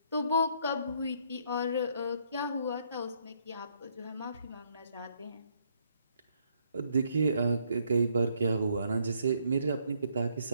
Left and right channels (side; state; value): both; inverted; correlation -0.70